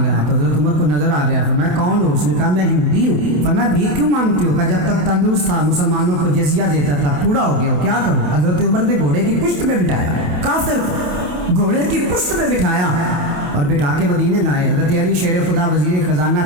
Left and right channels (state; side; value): late; left; 28 ms